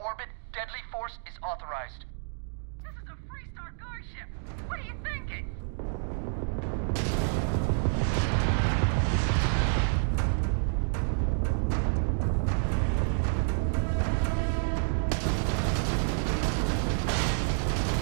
Deadly force is authorized. This is a Freestar guard ship. What are you thinking?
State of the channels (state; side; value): silent; left; 59 dB below the other